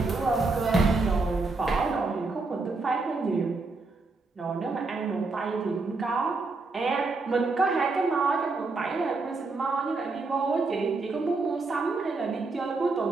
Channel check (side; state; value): left; quieter; 3.7 dB